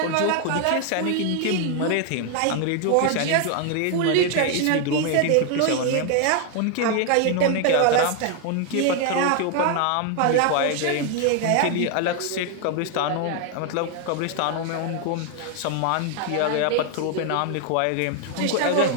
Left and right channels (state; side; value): different; both; correlation 0.00